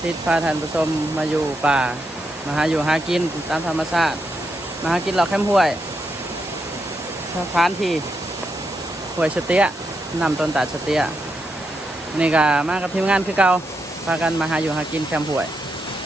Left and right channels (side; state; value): both; normal; correlation 0.83